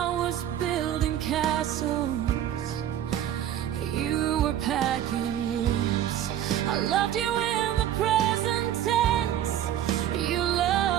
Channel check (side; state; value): left; quieter; 11.1 dB